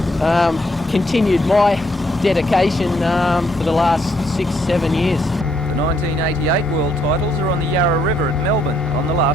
continued my dedication for the last 6-7 years. The 1988 world titles are on the Yarra River at Melbourne on the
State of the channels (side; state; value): both; normal; correlation 0.71